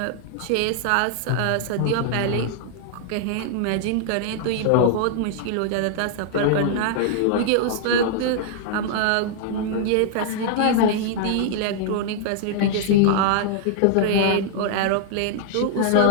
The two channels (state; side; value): different; both; correlation -0.01